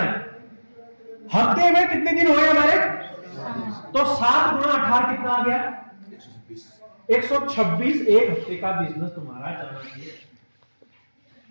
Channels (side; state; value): both; inverted; correlation -1.00